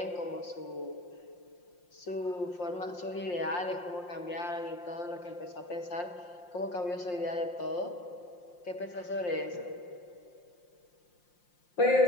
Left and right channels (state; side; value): late; right; 5.7 ms